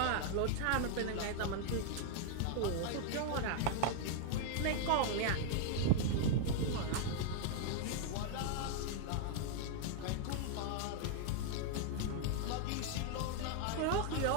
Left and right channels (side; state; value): both; different; correlation 0.00